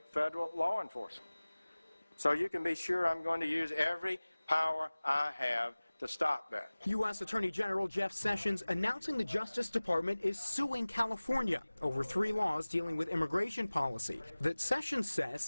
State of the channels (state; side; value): inverted; both; correlation -0.99